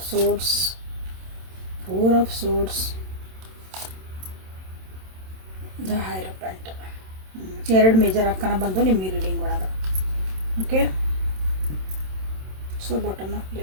swords, 4 of swords, the hierophant. 2 major ಅಕ್ಕನ ಬಂದು ನಿಮ್ಮ ರೀಡಿಂಗ್ ಒಳಗೆ. Okay, so bottom of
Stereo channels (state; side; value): late; left; 27 ms